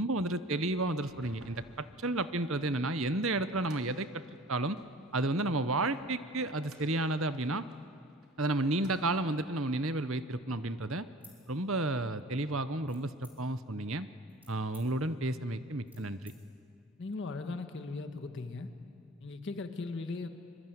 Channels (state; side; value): normal; both; correlation 0.44